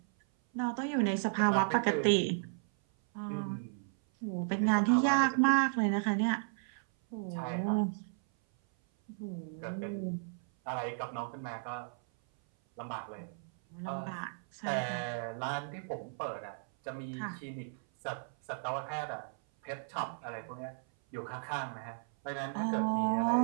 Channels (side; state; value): left; silent; 55 dB below the other